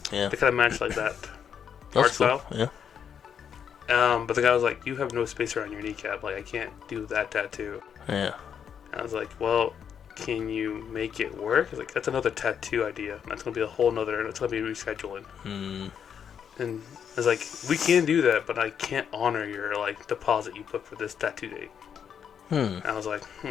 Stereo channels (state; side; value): quieter; right; 7.8 dB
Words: Yeah. They kind of match like that art style. Yeah. But the guy was like, "You have no space around your kneecap. Like I can't do that tattoo." Yeah. I was like, "Well, can you make it work?" He's like, "That's another tattoo idea. That's gonna be a whole nother. It's gonna be rescheduling." And I was like, "We can do that, but I can't honor your like deposit you put for this tattoo date." And I was like,